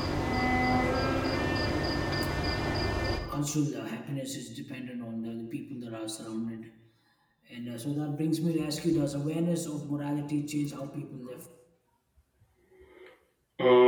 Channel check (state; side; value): identical; both; correlation 1.00